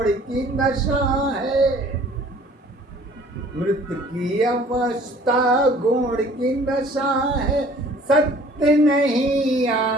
की दशा है। मृत्यु की अवस्था गुण की दशा है, सत्य नहीं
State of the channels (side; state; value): both; normal; correlation 0.52